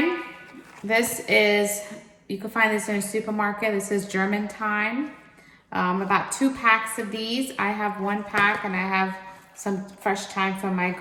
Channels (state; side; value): identical; both; correlation 1.00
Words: This is, you can find this in a supermarket. This is German thyme. About 2 packs of these. I have 1 pack and I have some fresh thyme from my